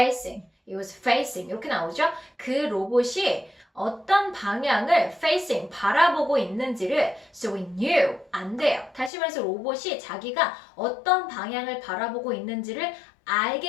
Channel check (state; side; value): drops out; right; at 9.1 s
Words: facing 이렇게 나오죠. 그 로봇이 어떤 방향을 facing 바라보고 있는지를 so we knew 안 돼요. 다시 말해서 로봇이 자기가 어떤 방향을 바라보고 있는지를